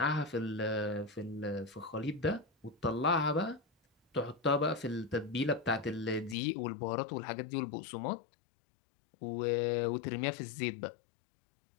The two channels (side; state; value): right; drops out; at 6.4 s